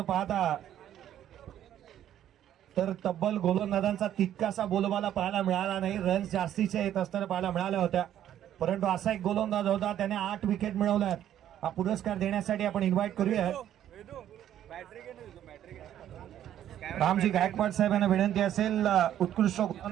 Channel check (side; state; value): left; quieter; 11.2 dB